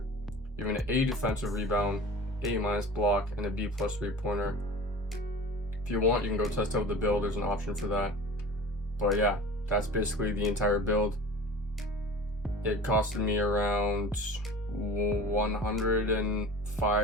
You have an A defensive rebound, A- block, and a B+ 3-pointer. If you want, you can go test out the build. There's an option for that. But yeah, that's basically the entire build. It costed me around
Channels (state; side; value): normal; both; correlation 0.38